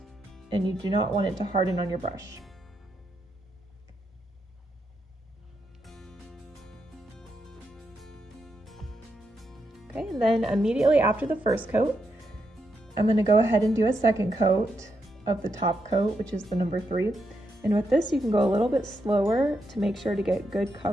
and you do not want it to harden on your brush. Okay, and then immediately after the first coat, I'm going to go ahead and do a second coat of the top coat, which is the number 3. And with this, you can go a little bit slower to make sure to get good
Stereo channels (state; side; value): normal; both; correlation 0.82